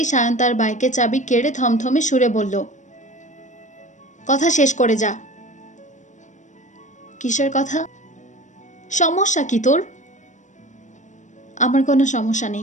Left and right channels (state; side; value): late; right; 0.35 ms